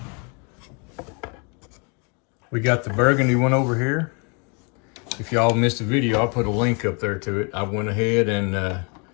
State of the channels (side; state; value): right; quieter; 34.4 dB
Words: We got the burgundy one over here. If y'all missed the video, I'll put a link up there to it. I went ahead and